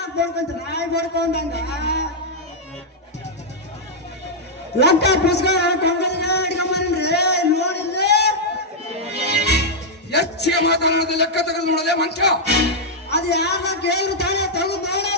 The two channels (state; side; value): normal; both; correlation -0.05